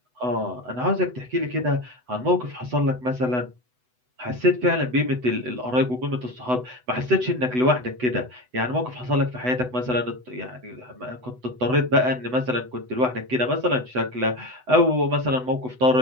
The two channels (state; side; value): late; left; 8.0 ms